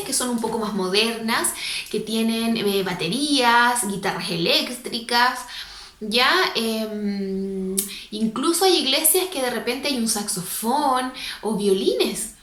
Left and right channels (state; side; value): identical; both; correlation 1.00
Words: que son un poco más modernas, que tienen baterías, guitarras eléctricas, ¿ya? Incluso hay iglesias que de repente hay un saxofón o violines.